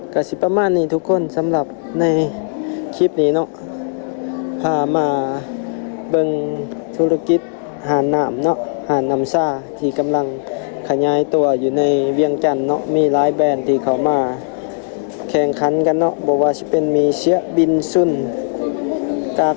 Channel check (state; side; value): silent; right; digital silence